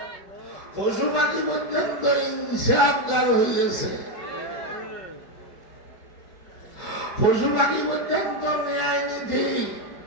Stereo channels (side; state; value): right; late; 4.9 ms